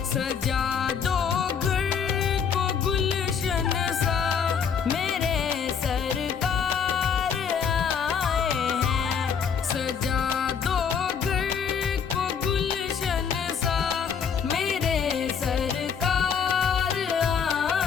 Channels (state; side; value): quieter; right; 6.9 dB